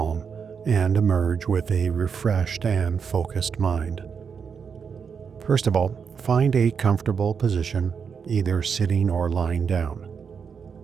and emerge with a refreshed and focused mind. First of all, find a comfortable position, either sitting or lying down.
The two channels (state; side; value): quieter; left; 6.4 dB